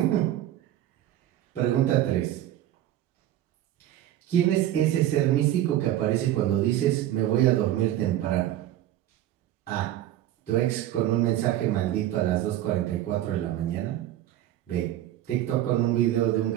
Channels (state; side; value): quieter; left; 13.0 dB